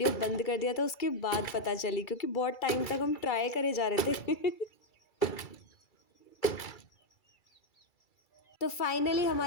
बंद कर दिया था उसके बाद पता चली, क्योंकि बहुत टाइम तक हम ट्राई करे जा रहे थे। तो फाइनली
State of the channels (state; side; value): late; right; 2.3 ms